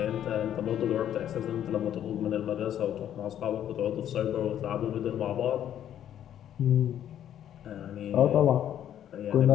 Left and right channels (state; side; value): quieter; right; 10.6 dB